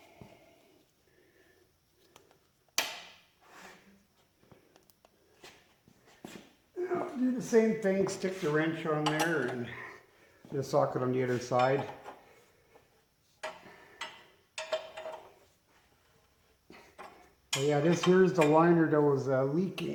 Do the same thing, stick the wrench on there and the socket on the other side. But yeah, this here's the liner that was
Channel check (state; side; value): identical; both; correlation 1.00